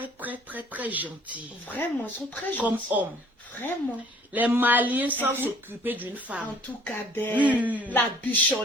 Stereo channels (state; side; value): normal; both; correlation 0.56